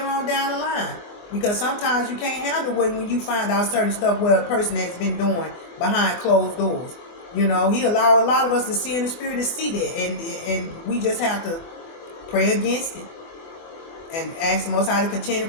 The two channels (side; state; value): right; late; 24 ms